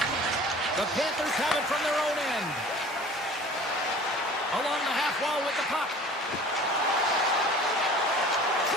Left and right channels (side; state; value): both; normal; correlation 0.45